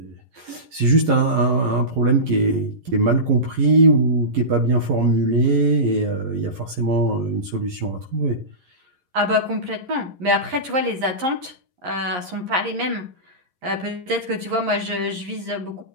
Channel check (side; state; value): left; late; 11 ms